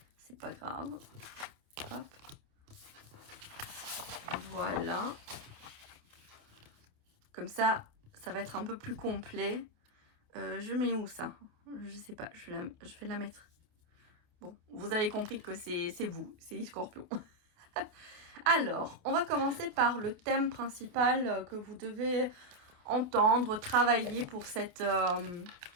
C'est pas grave. Hop. Voilà. Comme ça, ça va être un peu plus complet. Je mets où ça? Je sais pas. Je vais la mettre. Bon, vous avez compris que c'est vous, c'est les scorpions. Alors, on va commencer par le thème principal que vous devez entendre, travailler pour cette...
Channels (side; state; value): left; late; 28 ms